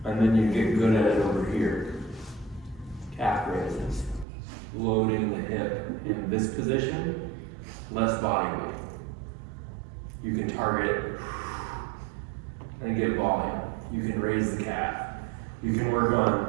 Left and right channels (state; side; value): drops out; left; at 4.2 s